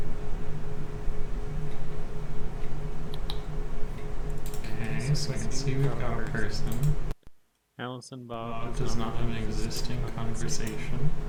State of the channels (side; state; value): both; identical; correlation 1.00